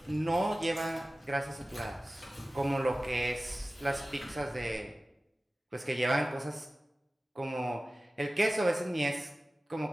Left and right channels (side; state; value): both; normal; correlation 0.97